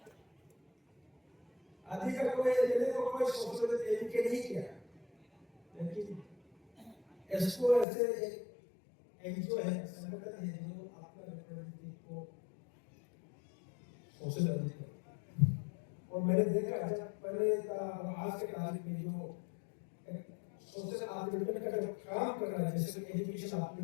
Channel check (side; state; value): right; drops out; at 7.9 s